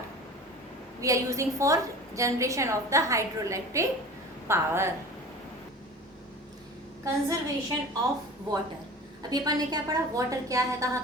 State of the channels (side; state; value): both; normal; correlation 0.38